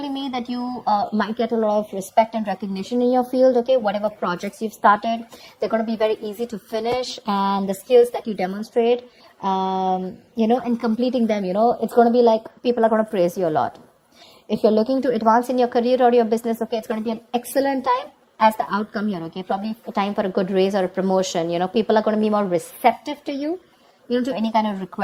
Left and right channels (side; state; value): both; identical; correlation 1.00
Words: me that you might get a lot of respect and recognition in your field, okay? Whatever projects you've started, they're going to be very easy to finish, and the skills that you demonstrate and completing them, it's going to be like people are going to praise you a lot. If you're looking to advance in your career or your business, okay, it's going to be an excellent time as the outcome here, okay? Probably a time for a good raise or a promotion. People are going to be more receptive to you, to any kind of